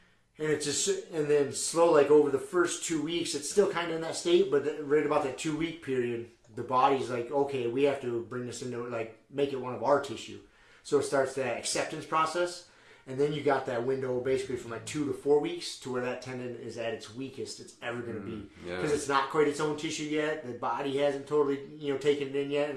And and then slow, like over the first 2 weeks, it's still kind of in that state. But right about that 2 week period, the body's like, okay, we have to bring this into, like, make it one of our tissue. So it starts that acceptance process. And then you got that window basically from like 2 to 4 weeks to where that tendon is at its weakest it's ever going to be. Because it's not quite its own tissue yet. The body hasn't totally, taken it in yet.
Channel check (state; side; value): identical; both; correlation 1.00